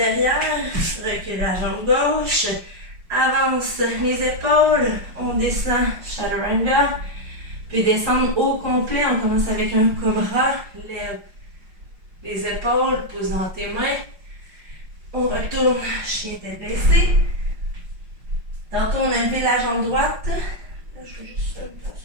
recule la jambe gauche. Avance les épaules, on descend chaturanga, puis descendre au complet, on commence avec un cobra, lève les épaules, pousse dans tes mains, on retourne chien tête baissée. Tantôt on a levé la jambe droite, là je vais juste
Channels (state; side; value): late; left; 5.6 ms